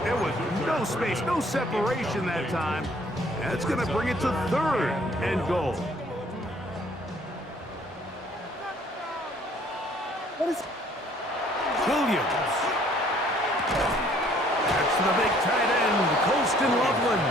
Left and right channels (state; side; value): normal; both; correlation 0.60